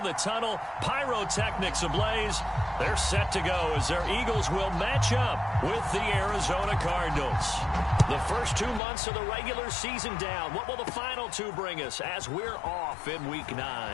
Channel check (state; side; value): drops out; right; at 8.8 s